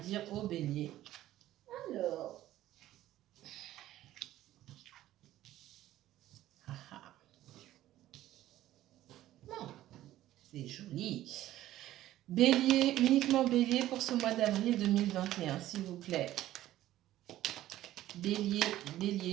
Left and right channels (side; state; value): left; quieter; 14.1 dB